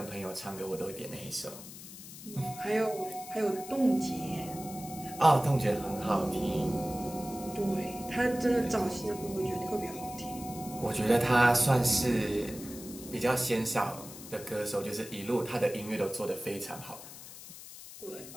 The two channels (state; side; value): noise; left; hiss, 14 dB below the sound